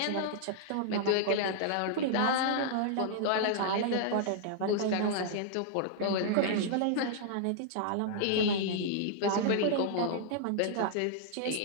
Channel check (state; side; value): different; both; correlation -0.01